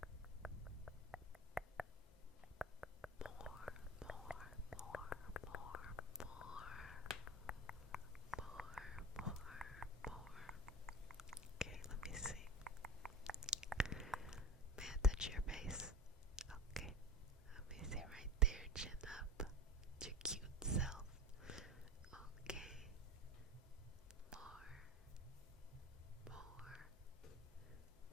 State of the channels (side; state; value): both; normal; correlation 0.30